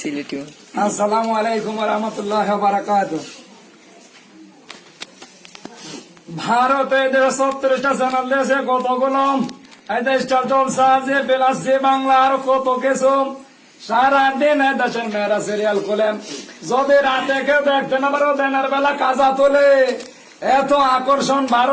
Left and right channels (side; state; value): both; identical; correlation 1.00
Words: আসসালামু আলাইকুম ওয়া রাহমাতুল্লাহি ওয়া বারাকাতুহু। ভারতে 70টা চ্যানেল দেশে কতগুলো স্টার জলসা যে বেলাস যে বাংলা আর কত কিছু সারাদিন দেশের মেয়েরা সিরিয়াল খোলেন। যদি রাতে কেউ দেখতে না পারো দিনের বেলা কাজা তোলে। এত আকর্ষণ